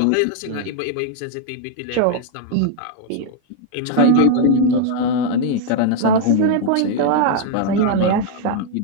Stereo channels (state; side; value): different; both; correlation 0.00